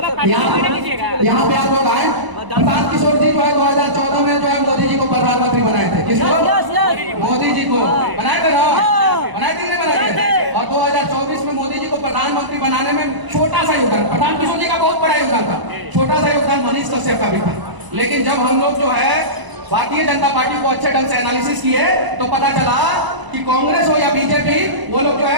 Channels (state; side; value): late; left; 1.0 ms